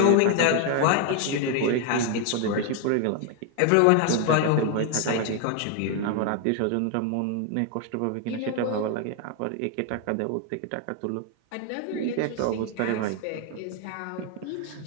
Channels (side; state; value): both; different; correlation 0.00